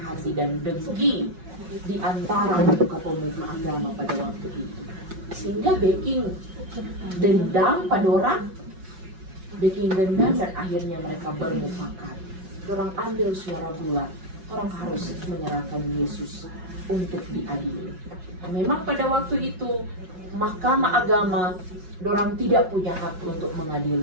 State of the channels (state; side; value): late; left; 5.4 ms